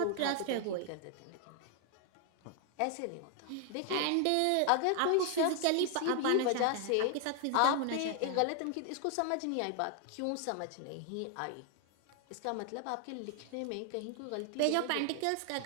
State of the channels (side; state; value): both; different; correlation 0.00